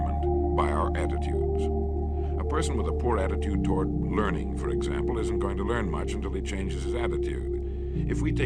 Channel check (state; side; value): identical; both; correlation 1.00